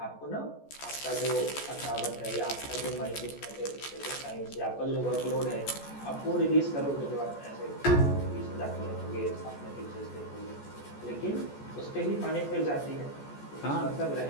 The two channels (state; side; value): late; right; 14 ms